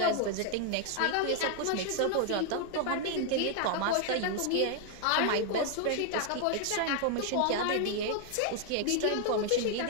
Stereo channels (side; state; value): both; different; correlation 0.00